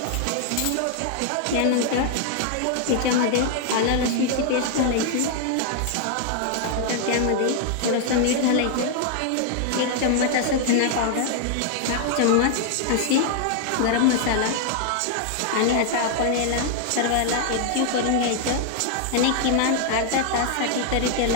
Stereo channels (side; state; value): both; different; correlation 0.00